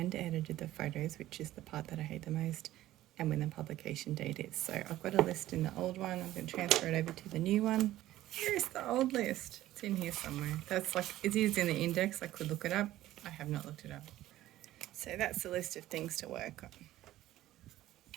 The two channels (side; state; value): left; quieter; 14.7 dB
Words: edited the photos, which is the part that I hate the most, and when the publication date is. So I've got a list in the old one. I'm going to transfer it over to the new one. Here's the old list. It's in here somewhere. It is in the index. I could look it up. I have not looked it up. So that's the list of things to work on.